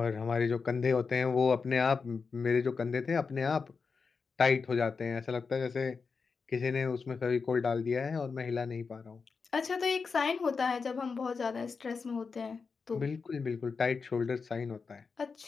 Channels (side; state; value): right; quieter; 5.0 dB